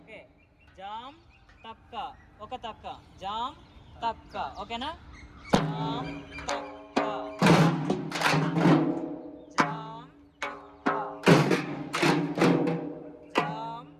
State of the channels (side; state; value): both; identical; correlation 1.00